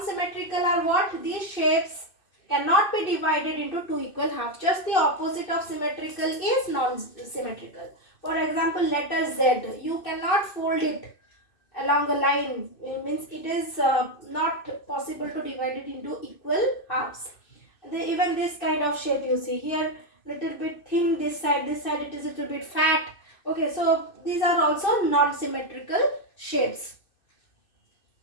are what? These shapes cannot be divided into two equal halves. Just the opposite of symmetrical is non-symmetrical. For example, letter Z. You cannot fold it along a line. It means it is not possible to divide it into equal halves. Even this kind of shape you see here, little bit thin this side it is a little bit fat. Okay, so these are also non-symmetrical shapes.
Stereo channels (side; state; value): right; late; 2.6 ms